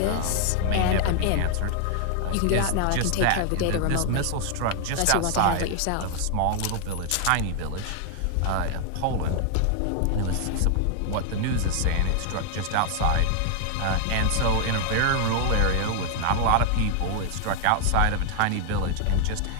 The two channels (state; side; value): different; both; correlation 0.00